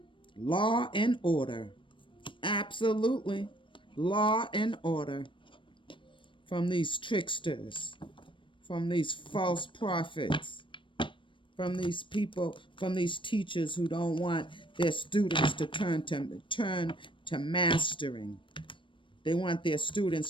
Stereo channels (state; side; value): late; right; 0.24 ms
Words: Law and order. Absolutely. Law and order. From these tricksters. From these false prophets. From these people, from these teachers who don't want their students to turn to mastering. They want their